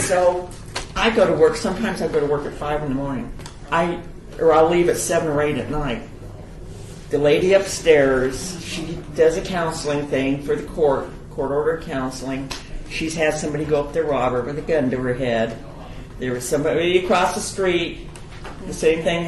I go to work. Sometimes I go to work at 5 in the morning. I'll leave at 7 or 8 at night. The lady upstairs, she does a counseling thing for the court order counseling. She's had somebody go up there, rob her with a gun to her head. There was somebody across the street. The same thing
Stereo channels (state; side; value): identical; both; correlation 1.00